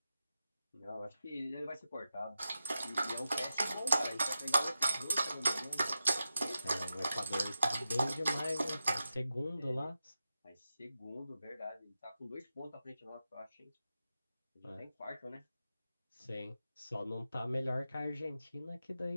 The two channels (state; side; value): inverted; both; correlation -0.90